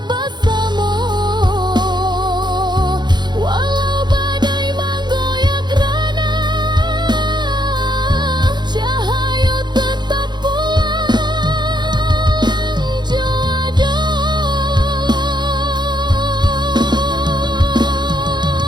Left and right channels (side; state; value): left; late; 0.21 ms